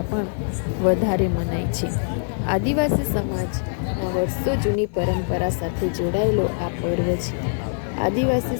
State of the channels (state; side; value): silent; right; digital silence